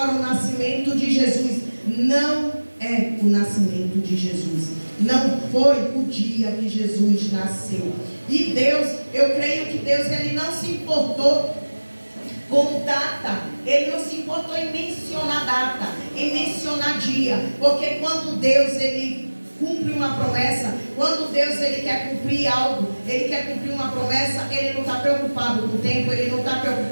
o nascimento de Jesus, não é o nascimento de Jesus. Não foi o dia que Jesus nasceu. E Deus, eu creio que Deus, ele não se importou com data, ele não se importou em mencionar data, em mencionar dia, porque quando Deus, ele cumpre uma promessa, quando Deus, ele quer cumprir algo, ele quer cumprir uma promessa, ele não está preocupado com o tempo, ele não está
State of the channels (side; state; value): both; inverted; correlation -1.00